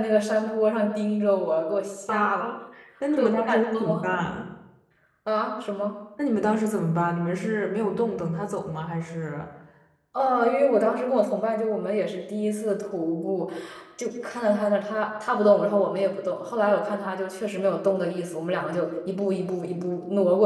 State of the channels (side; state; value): both; identical; correlation 1.00